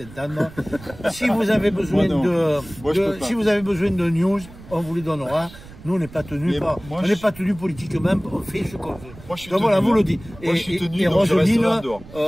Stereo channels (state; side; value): noise; right; rumble, 18 dB below the sound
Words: Si vous avez besoin si vous avez besoin de news, on vous les donnera. Nous on n'est pas tenus pas tenus politiquement, on fait ce qu'on veut. Donc voilà, vous le dites. Et Roseline,